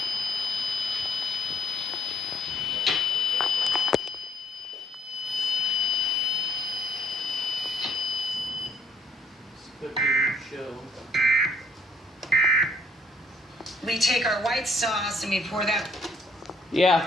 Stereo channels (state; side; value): normal; both; correlation 0.64